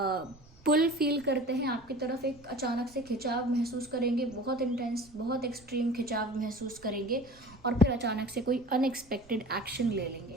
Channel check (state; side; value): noise; right; rumble, 26 dB below the sound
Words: पुल फील करते हैं आपकी तरफ, एक अचानक से खिंचाव महसूस करेंगे, बहुत इंटेंस, बहुत एक्सट्रीम खिंचाव महसूस करेंगे, और फिर अचानक से कोई अनएक्सपेक्टेड एक्शन ले